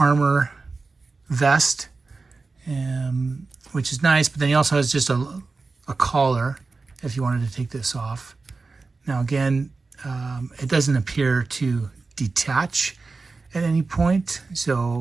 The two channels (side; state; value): left; quieter; 4.0 dB